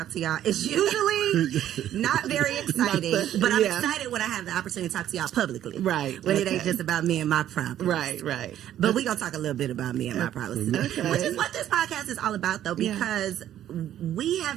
to y'all. It's usually not very exciting, but I'm excited when I have the opportunity to talk to y'all publicly. Right. When it ain't just about me and my problems. Right. But we're going to talk a little bit about me and my problems today. Which is what this podcast is all about, though, because we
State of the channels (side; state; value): left; quieter; 11.6 dB